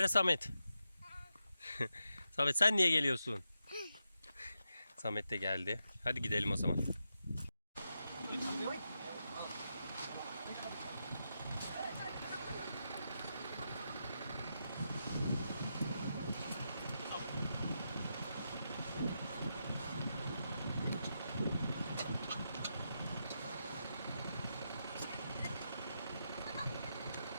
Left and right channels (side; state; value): both; inverted; correlation -0.86